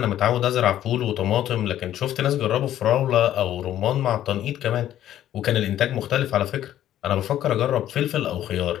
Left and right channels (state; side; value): quieter; right; 12.0 dB